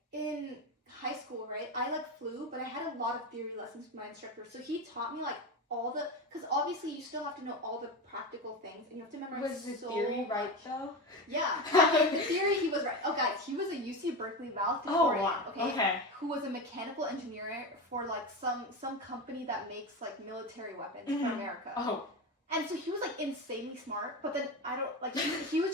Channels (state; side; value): normal; both; correlation 0.21